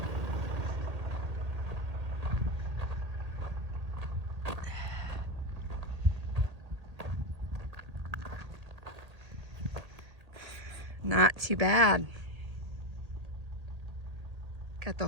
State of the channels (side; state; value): left; late; 1.8 ms